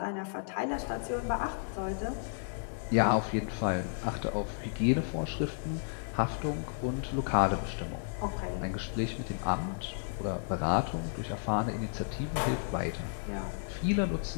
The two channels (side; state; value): right; silent; 56 dB below the other